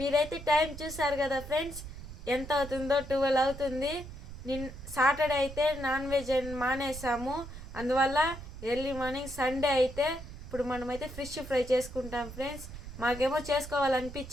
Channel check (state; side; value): noise; right; rumble, 12 dB below the sound